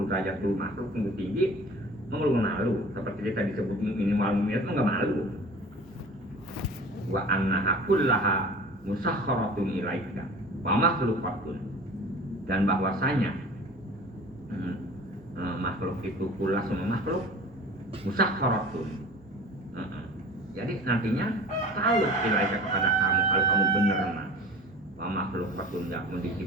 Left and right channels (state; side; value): normal; both; correlation 0.41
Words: derajat lu makhluk lu tinggi, lu malu seperti kita disebut minimal minat lu enggak malu. Wa annaha kullaha musakharatun ilaika wa makhluqatun, dan bahwasanya makhluk itu kullah semua makhluk musakharatun. Jadi nantinya tahu ilaika kepada kamu kalau kamu benar mah. Wa makhluqatun yakum